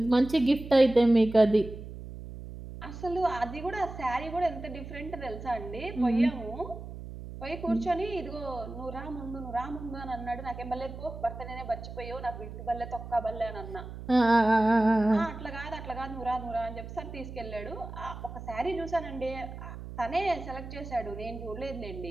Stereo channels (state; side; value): noise; right; hum, 11 dB below the sound